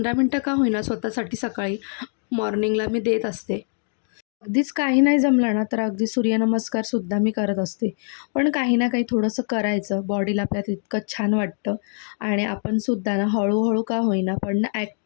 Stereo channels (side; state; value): right; silent; 57 dB below the other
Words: मिनटं का होईना स्वतःसाठी सकाळी मॉर्निंगला मी देत असते. अगदीच काही नाही जमलं ना, तर अगदी सूर्यनमस्कारसुद्धा मी करत असते. पण काही ना काही थोडंसं करायचं, बॉडीला आपल्या तितकं छान वाटतं आणि आपण सुद्धा ना हळूहळू का होईना पण ना